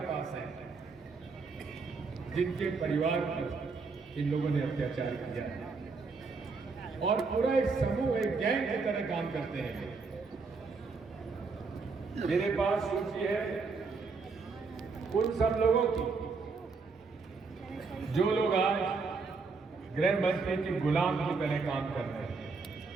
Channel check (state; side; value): quieter; left; 4.5 dB